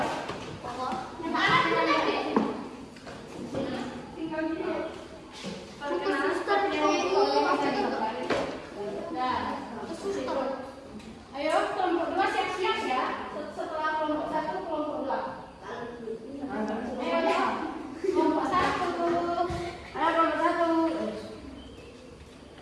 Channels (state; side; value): identical; both; correlation 1.00